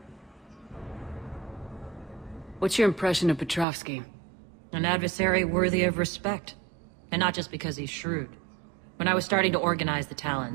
What's your impression of Petrovsky? An adversary worthy of respect. And not just because he's shrewd. When I was starting to organize the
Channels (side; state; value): left; drops out; at 3.7 s